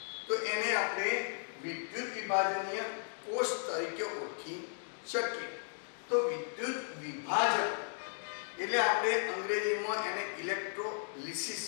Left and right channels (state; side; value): silent; right; digital silence